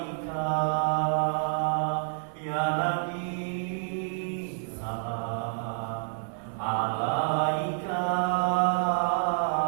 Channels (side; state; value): left; silent; 59 dB below the other